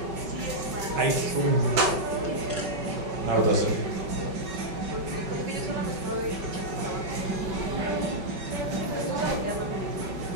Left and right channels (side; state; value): left; late; 5.3 ms